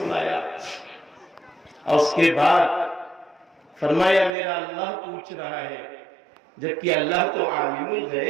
اور اس کے بعد فرمایا میرا اللہ پوچھ رہا ہے، جبکہ اللہ تو عالم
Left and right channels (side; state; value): left; drops out; at 4.3 s